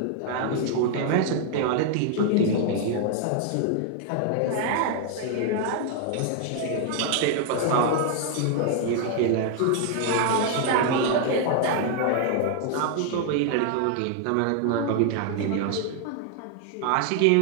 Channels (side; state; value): both; different; correlation 0.00